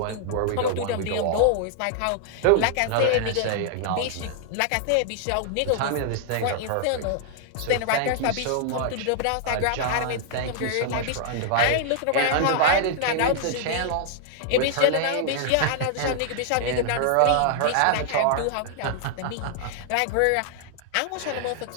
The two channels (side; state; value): both; different; correlation -0.01